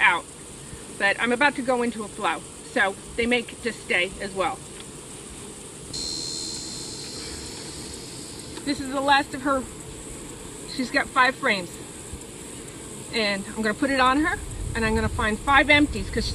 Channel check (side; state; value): both; identical; correlation 1.00